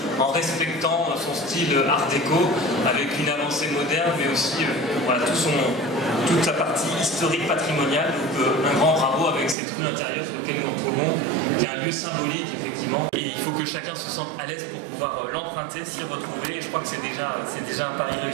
en respectant son style art déco avec une avancée moderne mais aussi voilà, toute sa partie historique patrimoniale. Donc un grand bravo avec cette rue intérieure sur laquelle nous nous retrouvons, qui est un lieu symbolique effectivement. Et il faut que chacun se sente à l'aise pour pouvoir l'emprunter, s'y retrouver. Et je crois que c'est déjà un pari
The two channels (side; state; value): left; drops out; at 9.6 s